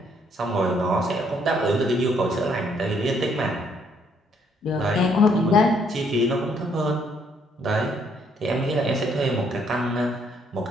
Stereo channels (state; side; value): normal; both; correlation 0.68